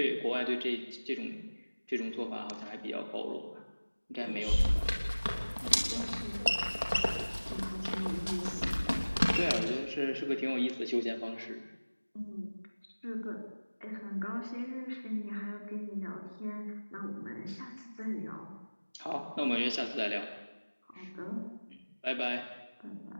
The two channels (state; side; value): inverted; both; correlation -1.00